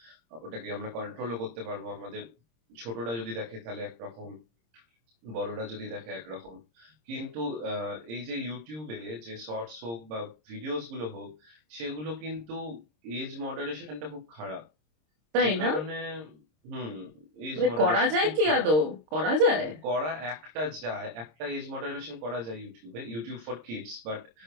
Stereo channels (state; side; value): late; left; 26 ms